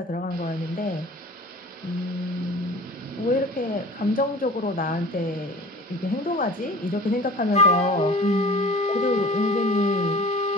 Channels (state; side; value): normal; both; correlation 0.41